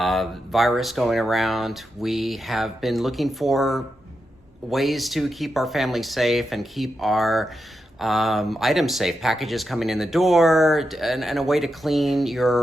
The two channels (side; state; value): both; normal; correlation 0.87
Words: going around, we have been looking for ways to keep our family safe and keep our items safe, packages coming in the door, and a way to clean